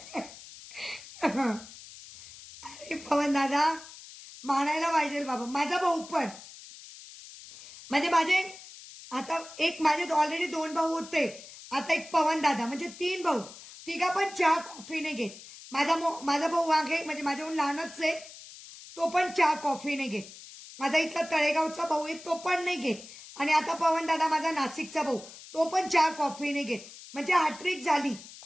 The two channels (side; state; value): left; noise; hiss, 17 dB below the sound